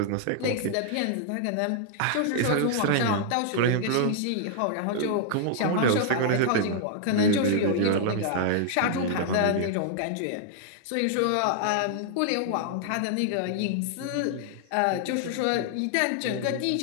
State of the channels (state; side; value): different; both; correlation -0.01